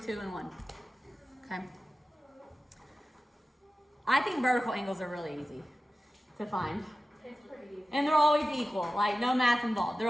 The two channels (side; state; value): both; normal; correlation 0.95